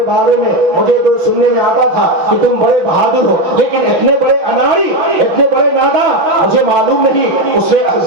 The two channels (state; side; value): late; left; 6.0 ms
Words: بارے میں مجھے تو سننے میں آتا تھا کہ تم بڑے بہادر ہو، لیکن اتنے بڑے اناڑی، اتنے بڑے ناداں مجھے معلوم نہیں۔ اس نے